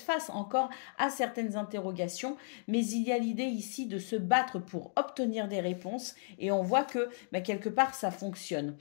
face encore à certaines interrogations, mais il y a l'idée ici de se battre pour obtenir des réponses et on voit que quelque part ça fonctionne.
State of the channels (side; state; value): right; silent; digital silence